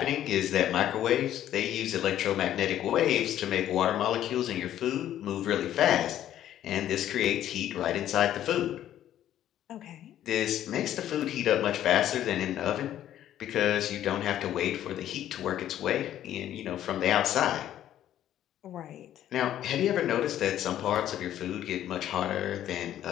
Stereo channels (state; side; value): quieter; right; 11.8 dB